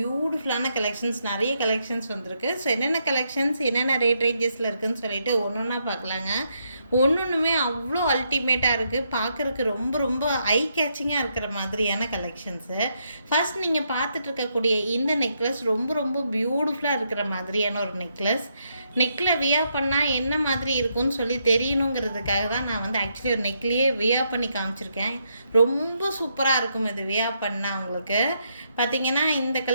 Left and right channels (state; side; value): inverted; both; correlation -0.78